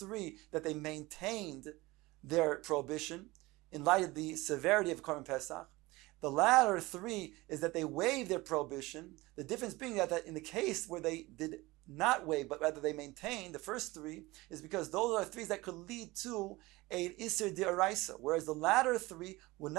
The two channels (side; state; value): left; quieter; 21.1 dB